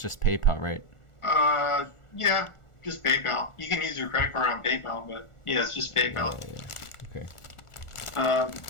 PayPal, right? Yeah, just PayPal. You can use your credit card on PayPal, but yeah, it's just PayPal. Yeah. Okay.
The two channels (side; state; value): right; late; 1.4 ms